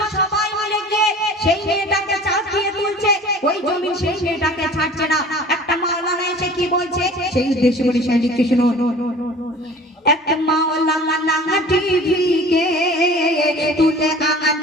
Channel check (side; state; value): both; normal; correlation 0.44